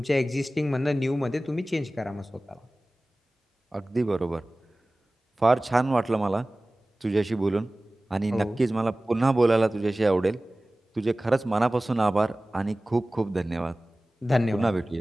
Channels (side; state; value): both; normal; correlation 0.98